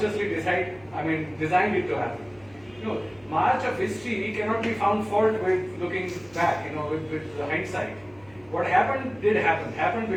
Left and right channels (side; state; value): right; noise; hum, 27 dB below the sound